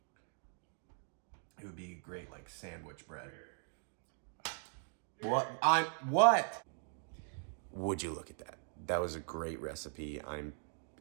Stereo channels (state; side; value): silent; left; 51 dB below the other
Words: It would be great like sandwich bread. What? Would you look at that? That was a great recipe.